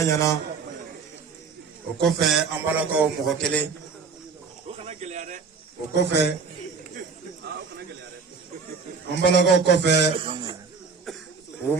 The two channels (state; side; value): quieter; left; 5.2 dB